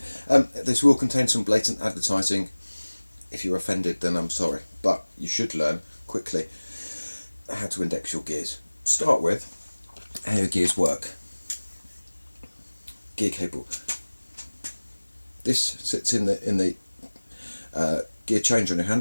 This will contain some blatant advertising. If you're offended, then I'm sorry, but you should learn quickly how to index your gears. Start with how your gears work. Gear cable. This sits in the gear changer on your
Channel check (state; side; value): inverted; both; correlation -1.00